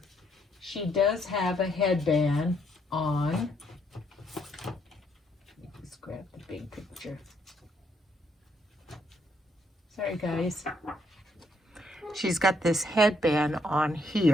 she does have a headband on. Let's grab the big picture. Sorry guys. She's got this headband on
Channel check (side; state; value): both; normal; correlation 0.72